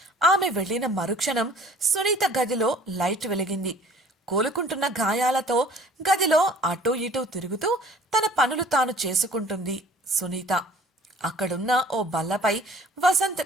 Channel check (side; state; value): both; normal; correlation 0.51